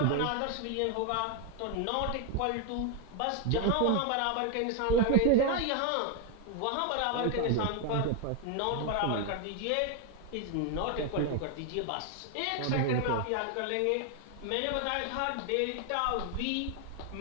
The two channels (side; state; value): both; different; correlation 0.01